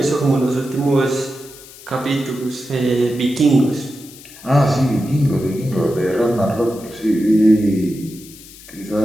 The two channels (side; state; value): left; noise; hiss, 19 dB below the sound